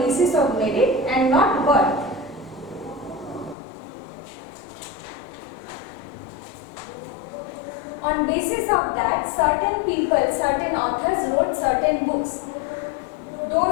of merit and not birth. On basis of that, certain people, certain authors wrote certain books.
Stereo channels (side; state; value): right; drops out; at 3.6 s